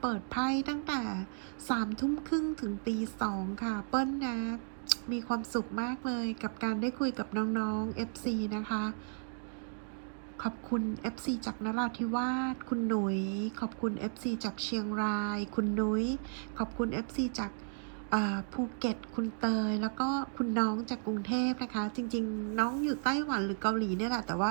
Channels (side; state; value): left; silent; digital silence